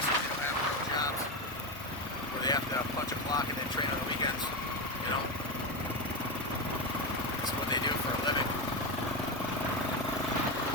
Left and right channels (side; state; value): both; normal; correlation 0.13